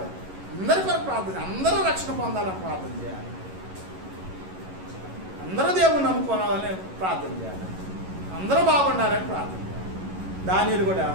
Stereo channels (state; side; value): late; left; 11 ms